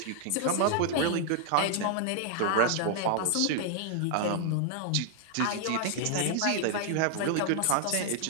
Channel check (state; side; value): different; both; correlation 0.00